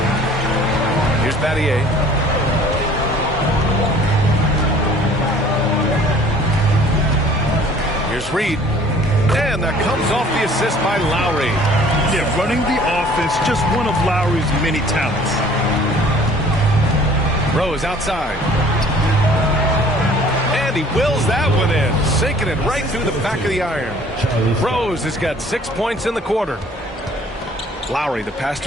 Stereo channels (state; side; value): normal; both; correlation 0.53